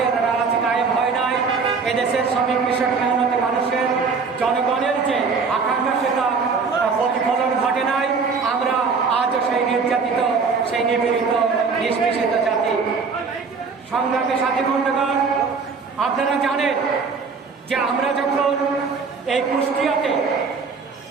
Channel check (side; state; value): left; quieter; 5.0 dB